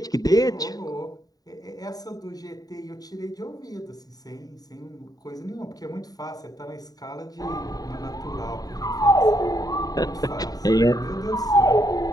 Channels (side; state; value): right; late; 0.18 ms